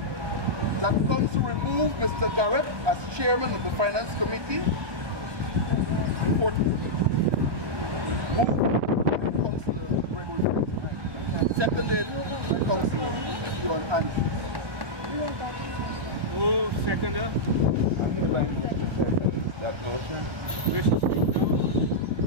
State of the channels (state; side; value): late; left; 1.2 ms